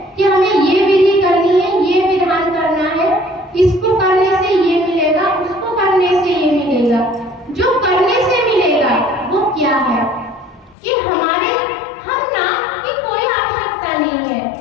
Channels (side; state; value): right; drops out; at 10.8 s